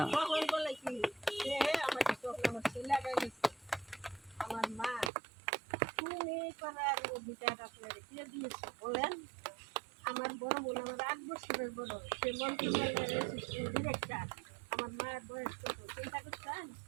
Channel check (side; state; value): left; drops out; at 5.1 s